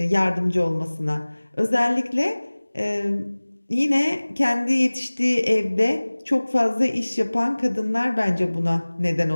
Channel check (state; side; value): inverted; both; correlation -1.00